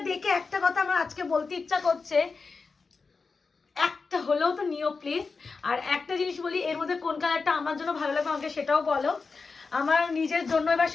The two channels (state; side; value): quieter; right; 4.5 dB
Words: দেখে একটা কথা আমার আজকে বলতে ইচ্ছা করছে, একটা হলেও তো নিও প্লিজ। আর একটা জিনিস বলি, এর মধ্যে কোন কালারটা আমার জন্য ভালো লাগবে আমাকে সেটাও বলো। আমার নিজের জন্য এবার